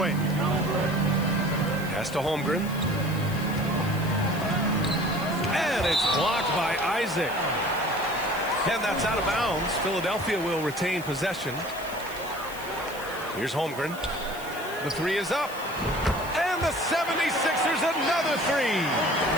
Pass to Holmgren. And it's blocked by Isaac. And that's out of bounds. Philadelphia will retain possession. Here's Holmgren. The three is up. And the 76ers another three.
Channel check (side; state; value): left; noise; hiss, 16 dB below the sound